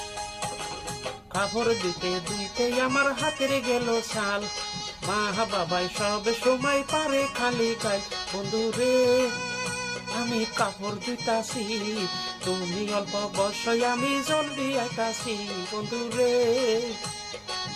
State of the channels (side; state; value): both; identical; correlation 1.00